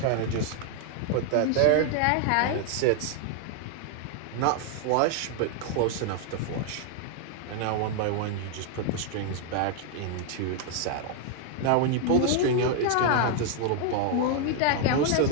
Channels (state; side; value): different; both; correlation 0.00